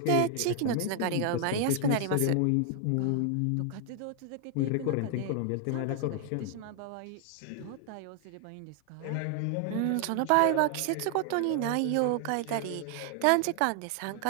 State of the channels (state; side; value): different; both; correlation 0.00